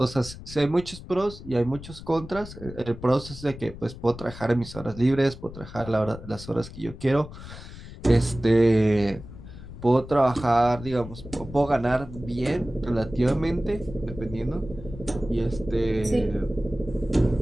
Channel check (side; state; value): left; noise; rumble, 14 dB below the sound